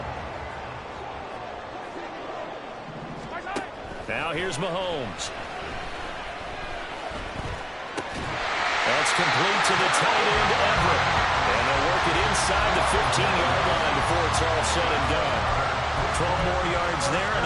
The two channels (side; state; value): both; identical; correlation 1.00